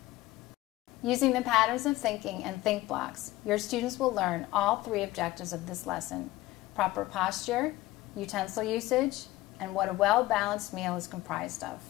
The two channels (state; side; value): quieter; right; 17.6 dB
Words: Using the patterns of thinking and think blocks, your students will learn all 3 objectives of this lesson: proper posture, utensil usage, and what a well-balanced meal is comprised of.